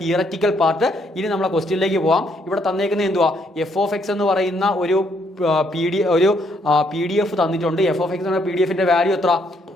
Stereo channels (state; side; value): normal; both; correlation 0.71